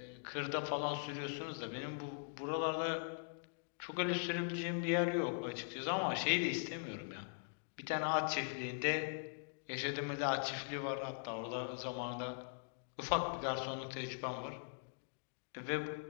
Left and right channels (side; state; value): right; silent; digital silence